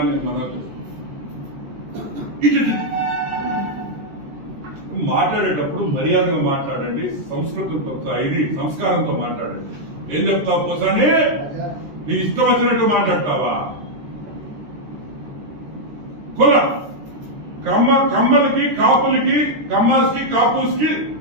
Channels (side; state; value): left; late; 13 ms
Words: నేను మనవి మాట్లాడేటప్పుడు మర్యాదగా మాట్లాడండి, సంస్కృతంతో సంస్కారంతో మాట్లాడండి. ఏం చెప్తావు పోసాని? నీ ఇష్టం వచ్చినట్టు మాట్లాడతావా? కుల కమ్మలకి కాపులకి కమ్మాస్కి కాపుస్కి